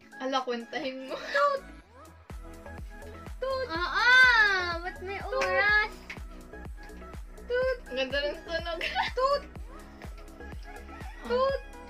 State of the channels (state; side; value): identical; both; correlation 1.00